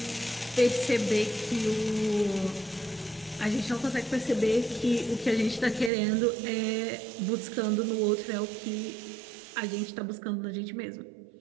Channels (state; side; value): drops out; left; at 5.9 s